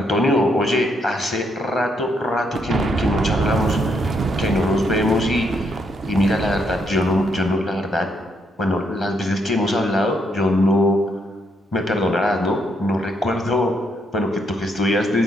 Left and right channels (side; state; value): both; normal; correlation 0.75